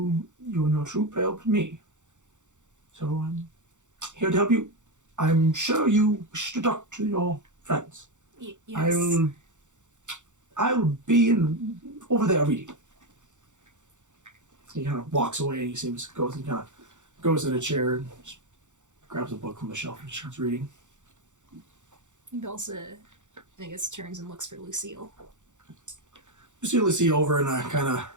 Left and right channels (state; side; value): late; left; 0.85 ms